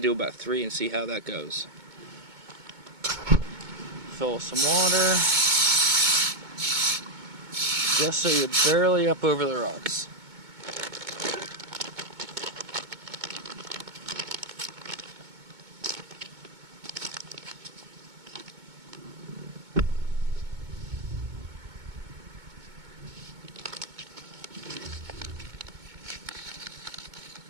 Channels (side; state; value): left; late; 2.2 ms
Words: about 3 and see how that goes. Fill with some water, just so you're barely up over the rocks.